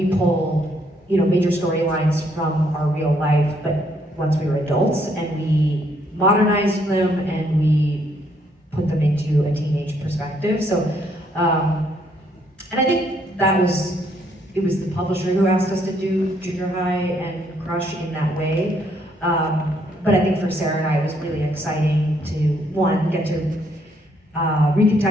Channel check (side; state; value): both; normal; correlation 0.70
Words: pull major storylines from our real life, but once we were adults, and we modernized them and we put them into a teenage perspective. So and I think it was the publisher who asked us to do Junior High and Crush in that way. But I think for Sarah and I, it was really exciting to, one, get to